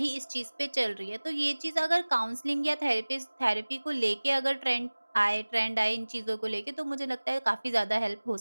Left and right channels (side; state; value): both; inverted; correlation -1.00